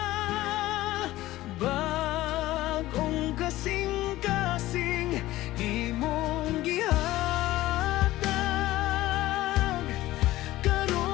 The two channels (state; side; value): quieter; right; 16.5 dB